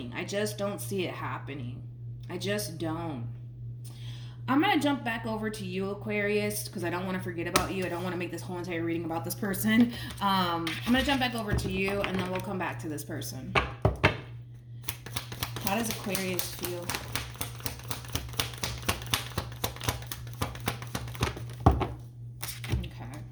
I just don't see it happening. I just don't. I'm gonna jump back over to you, Aquarius, because I don't want to forget about you. I don't want to make this whole entire reading about this person. I'm gonna jump back over to you, and then we'll come back to this person. How does Aquarius feel? Okay.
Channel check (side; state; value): both; identical; correlation 1.00